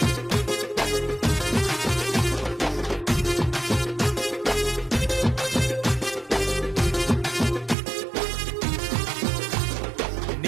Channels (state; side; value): drops out; left; at 7.8 s